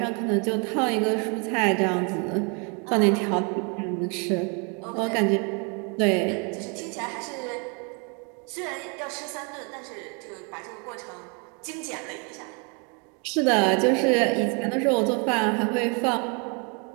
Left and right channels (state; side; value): quieter; left; 34.7 dB